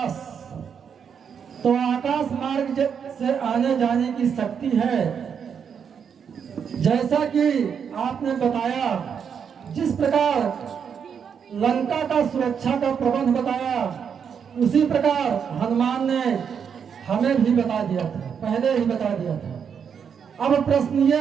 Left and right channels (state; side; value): quieter; left; 7.2 dB